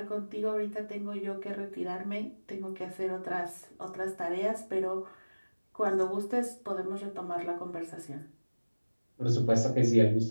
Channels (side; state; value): both; inverted; correlation -1.00